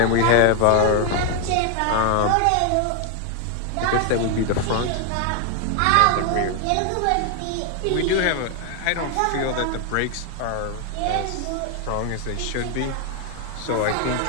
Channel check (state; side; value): different; both; correlation 0.01